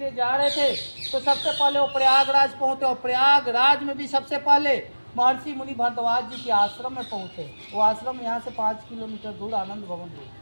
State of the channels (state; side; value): inverted; both; correlation -1.00